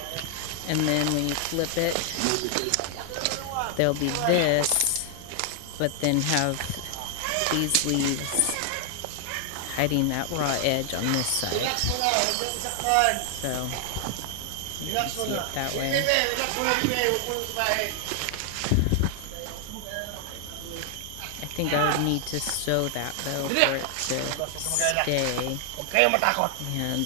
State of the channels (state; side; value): different; both; correlation 0.00